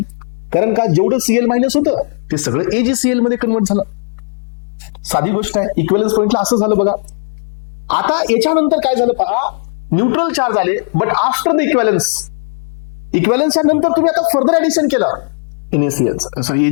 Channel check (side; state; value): right; silent; digital silence